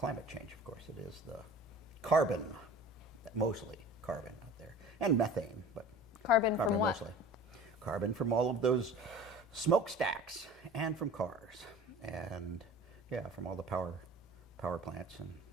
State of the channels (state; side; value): normal; both; correlation 0.42